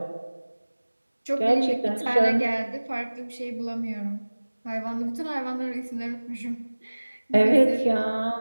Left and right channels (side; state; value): both; inverted; correlation -1.00